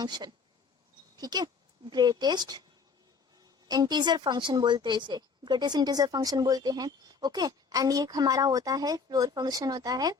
ठीक है, ग्रेटेस्ट इंटीजर फंक्शन बोलते हैं इसे, ग्रेटेस्ट इंटीजर फंक्शन बोलते हैं, ओके। एंड ये हमारा होता है फ्लोर फंक्शन होता है,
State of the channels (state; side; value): quieter; right; 5.1 dB